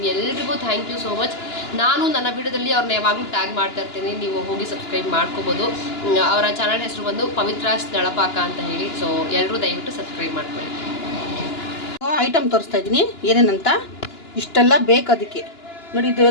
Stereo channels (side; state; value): right; late; 2.9 ms